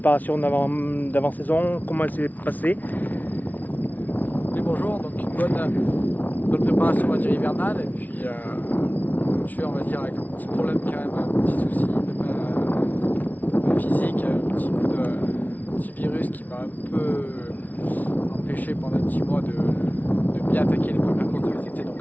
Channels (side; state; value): right; late; 0.078 ms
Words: d'avant-saison, comment elle s'est passée? Oui, bonjour, donc une bonne préparation, on va dire, hivernale, et puis ponctuée, on va dire, avec un petit problème quand même, un petit souci physique, un petit virus qui m'a un peu empêché pendant un petit mois de bien attaquer les premières courses de l'été, donc